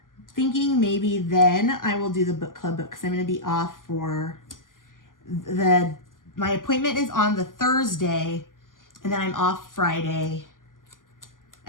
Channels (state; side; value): late; right; 0.89 ms